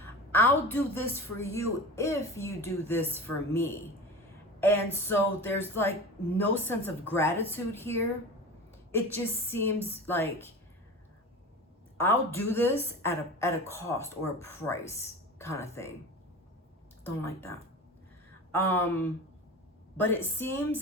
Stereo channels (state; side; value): normal; both; correlation 0.32